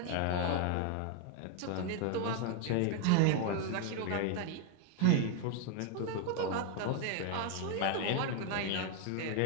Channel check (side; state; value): both; different; correlation 0.01